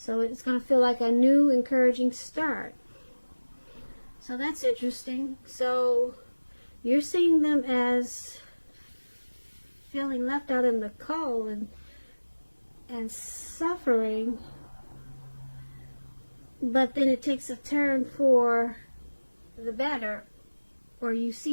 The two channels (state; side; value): inverted; both; correlation -1.00